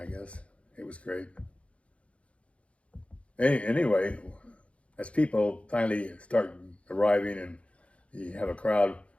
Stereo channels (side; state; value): right; late; 0.062 ms